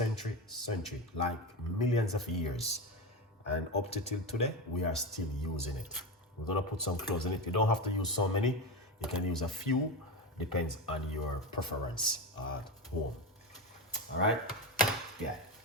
like millions of years. And up to till today, we are still using it. We're gonna put some cloves in it. You don't have to use so many. You can use a few, depends on your preference at home. All right, yeah,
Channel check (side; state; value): both; normal; correlation 0.18